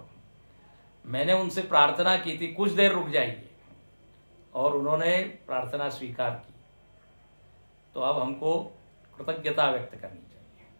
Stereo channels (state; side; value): inverted; both; correlation -1.00